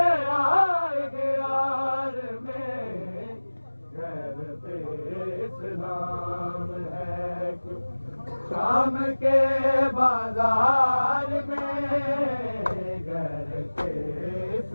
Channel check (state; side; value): inverted; both; correlation -1.00